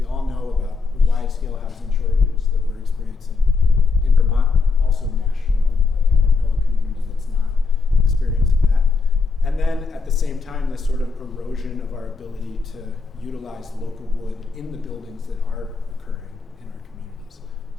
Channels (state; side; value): quieter; right; 4.4 dB